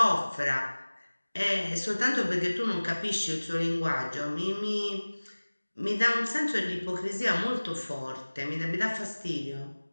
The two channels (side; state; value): both; inverted; correlation -1.00